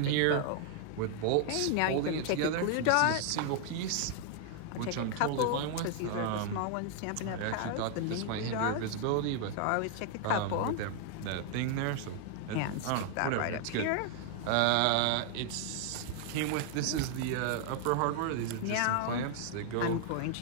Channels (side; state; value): both; different; correlation 0.00